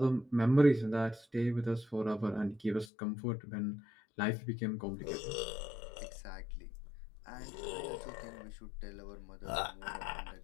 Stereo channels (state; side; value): drops out; right; at 2.9 s